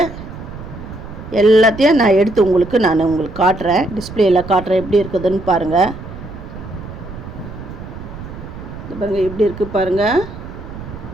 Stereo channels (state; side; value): noise; right; rumble, 12 dB below the sound